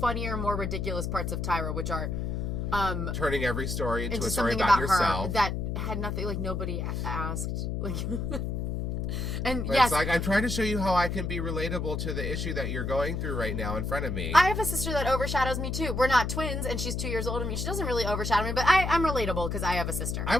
more ridiculous parts of Tyra, which are... turning every story into a story something about her yourself. that had nothing, like, nobody asked. Like... And but yes, it's like, I'm trying to show you how I can be relatable to the issue that you're going through right now in front of me. I have a sister that overshadows me too. We're not twins, and she's 2 years older than me. She doesn't really overshadow me, but I'm relatable because I have a sister. I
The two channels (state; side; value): noise; left; hum, 2 dB below the sound